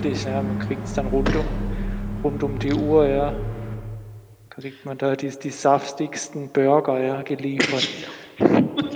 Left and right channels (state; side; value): identical; both; correlation 1.00